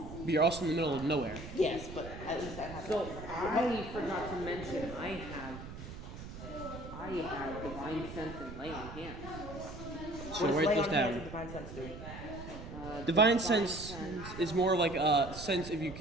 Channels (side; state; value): right; noise; rumble, 11 dB below the sound